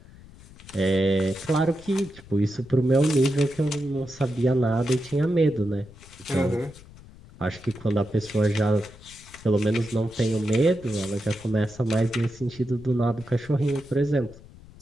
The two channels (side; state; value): left; noise; rumble, 21 dB below the sound